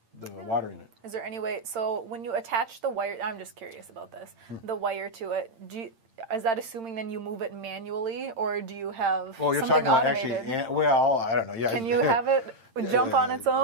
water in it. Is there any way? So when you attach the wire, I'm just curious about this. The wire to it. Is that assuming then you move it manually, or do you have you're something talking about automated? actually. Well, I don't know. Yeah. Can you have it jump on its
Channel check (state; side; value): late; left; 8.8 ms